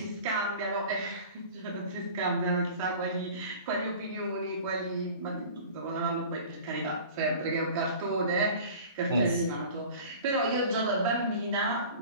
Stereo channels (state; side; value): inverted; both; correlation -0.41